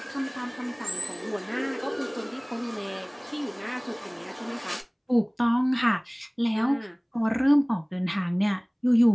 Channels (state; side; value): identical; both; correlation 1.00